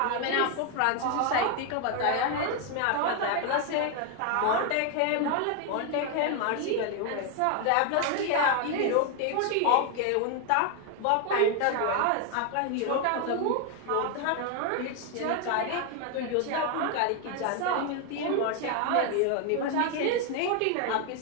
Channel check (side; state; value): both; different; correlation 0.01